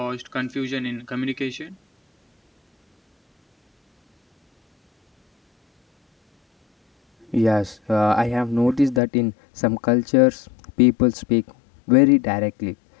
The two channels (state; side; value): drops out; right; at 9.0 s